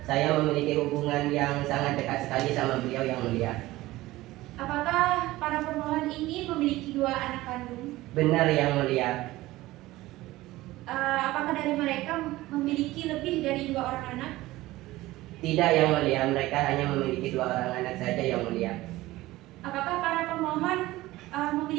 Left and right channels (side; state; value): left; quieter; 17.8 dB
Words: saya memiliki hubungan yang sangat dekat sekali sama beliau yang mulia. Apakah para pemohon ini memiliki 2 anak kandung? Benar yang mulia. Apakah dari mereka memiliki lebih dari 2 orang anak? Tidak yang mulia, mereka hanya memiliki 2 orang anak saja yang mulia. Apakah para pemohon